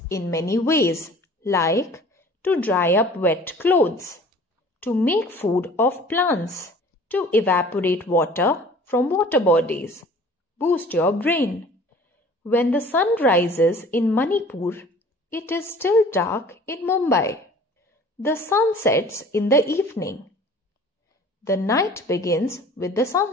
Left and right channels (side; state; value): both; normal; correlation 0.47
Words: in many ways, like to dry up wet clothes, to make food of plants, to evaporate water from water bodies, boost your brain. When the sun rises in Manipur, it is still dark in Mumbai. The sun sets in the evening. The night begins with the